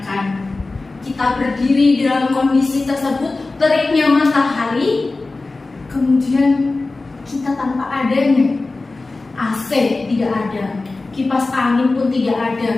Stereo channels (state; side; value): quieter; right; 3.4 dB